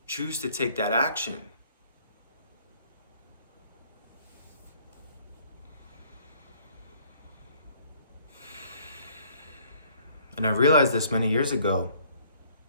choose to take that action. And I realized this many years ago,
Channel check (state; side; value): inverted; both; correlation -0.60